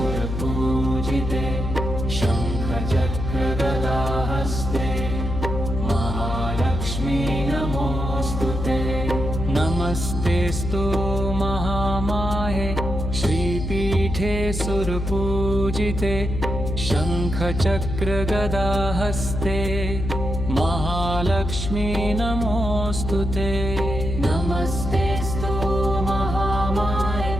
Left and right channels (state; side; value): noise; left; hum, 4 dB below the sound